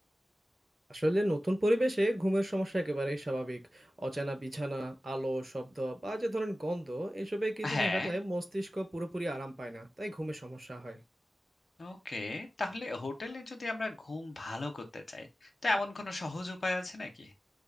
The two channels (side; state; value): both; normal; correlation 0.95